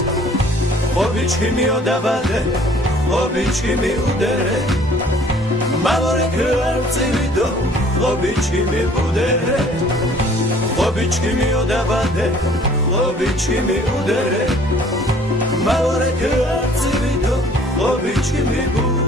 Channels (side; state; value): both; normal; correlation 0.55